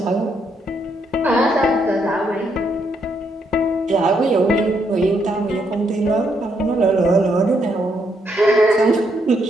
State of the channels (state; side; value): normal; both; correlation 0.75